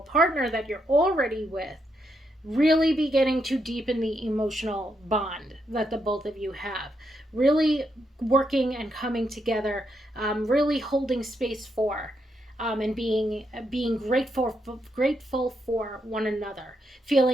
that you're already with really beginning to deepen the emotional bond that the both of you have. Really working and coming together, really holding space for and being grateful for one another,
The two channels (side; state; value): both; normal; correlation 0.80